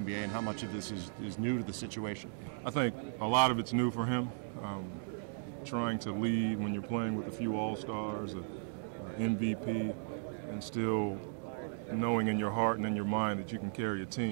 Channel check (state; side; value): silent; left; digital silence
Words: and how much of this is new to the situation? I think a lot of it's new for him. Trying to lead when you're playing with a few All-Stars, a MVP, and still knowing in your heart and in your mind that you can carry a